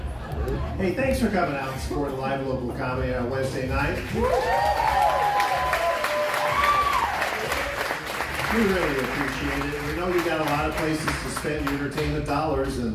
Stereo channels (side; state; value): both; identical; correlation 1.00